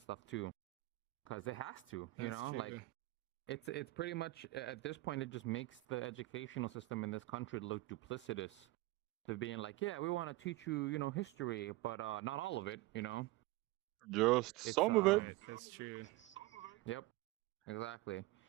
too. Because it has to, it's pretty much, at this point, it just makes the educational system in this country look duplicitous. To being like, yeah, we want to teach you, history, but not all of it, Just some of it. That's true. Yep, exactly.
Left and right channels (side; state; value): left; quieter; 19.4 dB